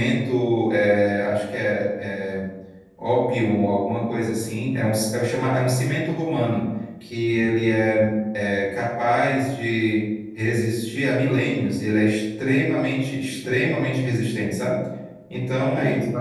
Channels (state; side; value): identical; both; correlation 1.00